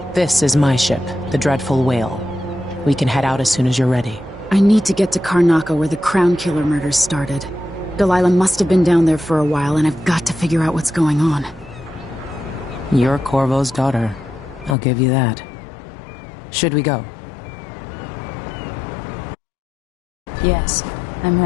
This is my ship, the Dreadful Whale. We can head out as soon as you're ready. I need to get to Karnaca where the Crown Killer murders started. Delilah must have been down there for a while, and I've got to figure out what's going on. You're Corvo's daughter. I'll give you that. Should we go? Yes, I'm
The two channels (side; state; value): right; drops out; at 14.8 s